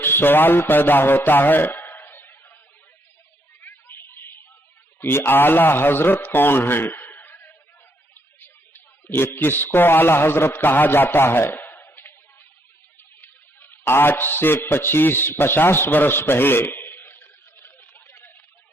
سوال پیدا ہوتا ہے کہ اعلی حضرت کون ہیں؟ یہ کس کو اعلی حضرت کہا جاتا ہے؟ آج سے 50 برس پہلے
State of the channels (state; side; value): normal; both; correlation 0.73